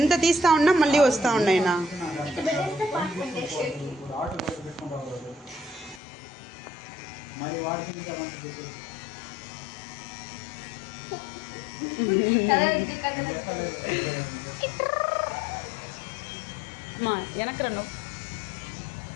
తీస్తా ఉన్నా మళ్ళీ వస్తా ఉన్నాయినా. మా వెనక్రా నువ్వు.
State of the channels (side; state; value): right; drops out; at 6.0 s